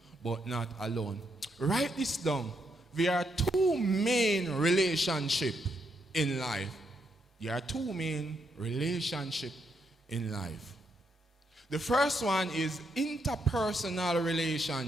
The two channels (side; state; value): both; normal; correlation 0.78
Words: but not alone. Write this down. There are two main relationships in life. There are two main relationships in life. The first one is interpersonal